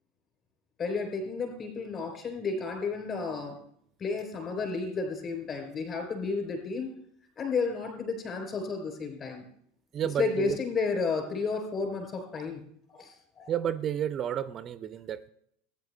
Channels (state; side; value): normal; both; correlation 0.58